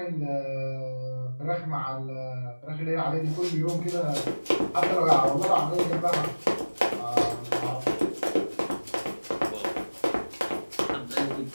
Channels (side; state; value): both; inverted; correlation -1.00